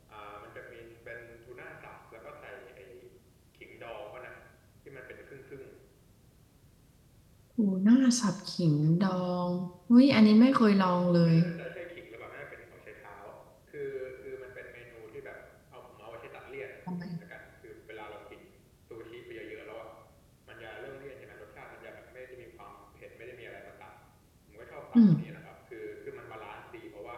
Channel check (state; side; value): identical; both; correlation 1.00